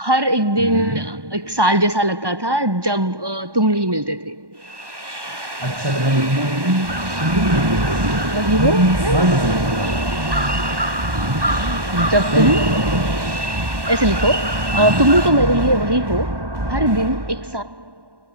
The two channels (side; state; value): left; late; 1.1 ms